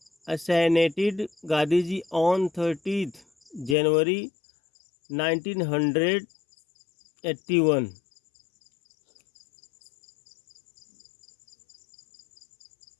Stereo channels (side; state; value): right; drops out; at 3.8 s